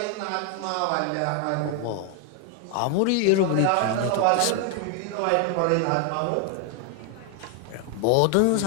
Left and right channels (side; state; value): both; different; correlation 0.00